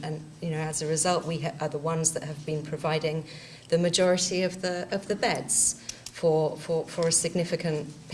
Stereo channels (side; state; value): both; identical; correlation 1.00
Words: you know, as a result, we are the ones that have been providing the majority of the beds for a significant